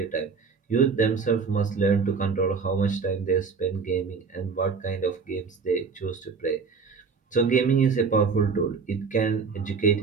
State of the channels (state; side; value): quieter; left; 5.2 dB